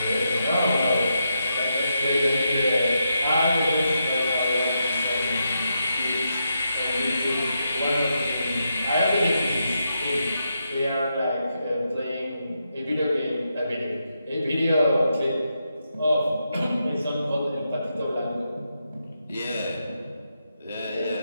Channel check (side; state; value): both; inverted; correlation -0.84